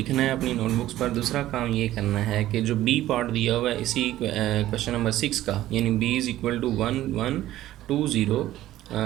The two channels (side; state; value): left; quieter; 14.4 dB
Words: है अपनी नोटबुक्स पर, दूसरा काम ये करना है कि जो बी पार्ट दिया हुआ है इसी क्वेश्चन नंबर 6 का, यानी b इज़ इक्वल टू 1, 1, 2, 0,